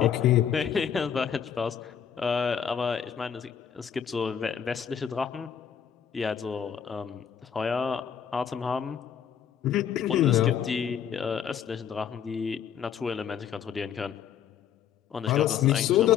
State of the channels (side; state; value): right; quieter; 8.5 dB